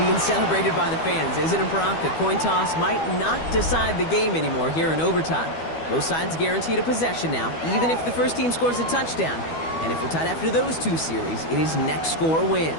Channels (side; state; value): right; late; 12 ms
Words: being celebrated by the fans, isn't it, Brock? A coin toss might not decide the game anymore here in overtime. Both sides guaranteed a possession now, even if the first team scores a touchdown. And if we're tied after those 2 series, it is next score